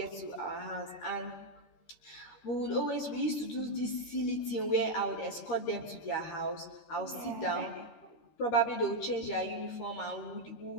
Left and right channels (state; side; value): late; right; 13 ms